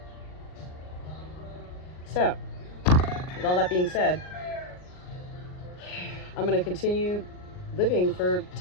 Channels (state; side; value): late; right; 39 ms